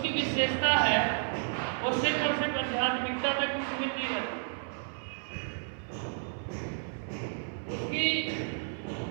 विशेषता है वो सिर्फ और सिर्फ आध्यात्मिकता तक ही सीमित नहीं रहती। उसकी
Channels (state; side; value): silent; left; 57 dB below the other